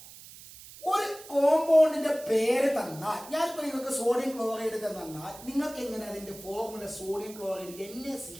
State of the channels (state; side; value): noise; right; hiss, 17 dB below the sound